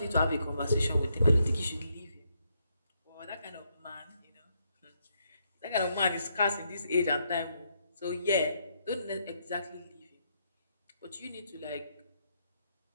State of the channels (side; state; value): both; inverted; correlation -0.77